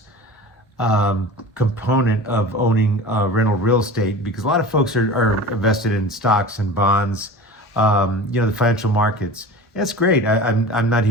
component of owning rental real estate, because a lot of folks are invested in stocks and bonds, the financial markets. That's great. I'm not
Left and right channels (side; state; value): both; normal; correlation 0.36